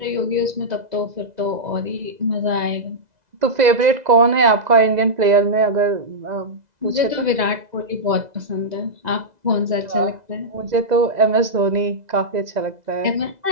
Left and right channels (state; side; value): late; left; 2.0 ms